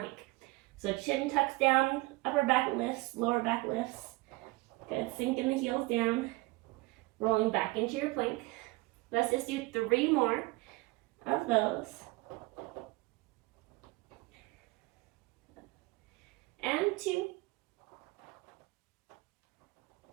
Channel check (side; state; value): left; quieter; 23.1 dB